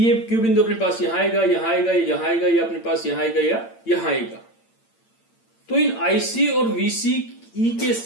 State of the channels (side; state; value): right; late; 8.8 ms